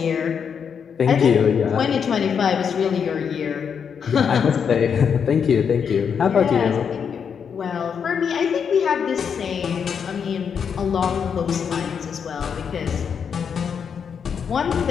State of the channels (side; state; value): right; quieter; 7.0 dB